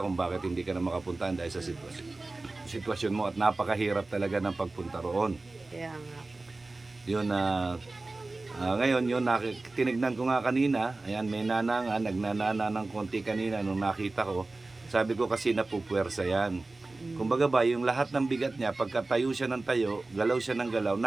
kung bakit hindi ka na makapunta dahil sa sitwasyon mo at napakahirap talaga ng pagpunta roon. Kaya nga po. Yun ngayon yun tinignan ko nga kanina. Ayan, may nana nga nagnanana ng konti kanina nung nakita ko. Sabi ko kasi napupuwersa yan. Kumbaga ba yung lahat ng bigat niya pagka tayo siya ng tayo, galaw siya ng galaw,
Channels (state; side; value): quieter; left; 3.2 dB